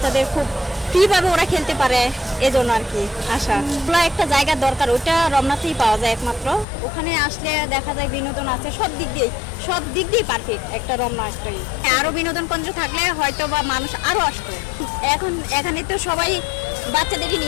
খুব ফ্রিভাবে ওরা খেলতে পারে, এজন্য আর কি আসা। খোলা একটা জায়গার দরকার, ওইটা রমনাতেই পাওয়া যায় একমাত্র। ওখানে আসলে দেখা যায় বিনোদন আছে সব দিক দিয়ে পারফেক্ট একটা রমনা একটাই। আরো বিনোদন কেন্দ্র থাকলে হয়তো বা মানুষ আরো আসতো। এখন এখানে তো সবাই বাচ্চাদেরই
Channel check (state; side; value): drops out; right; at 6.7 s